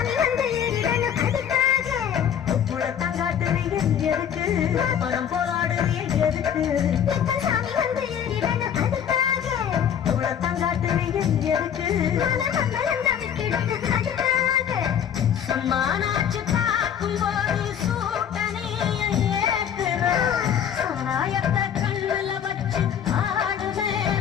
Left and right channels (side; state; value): right; quieter; 8.8 dB